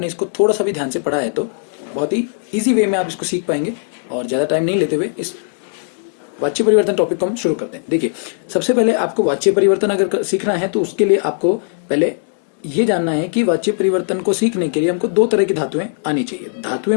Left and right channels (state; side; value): silent; right; digital silence